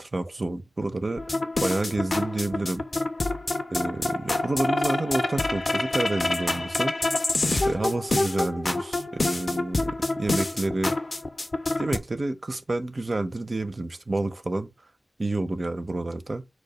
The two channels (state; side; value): normal; both; correlation 0.95